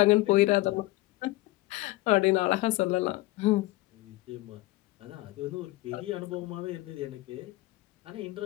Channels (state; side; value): quieter; right; 19.4 dB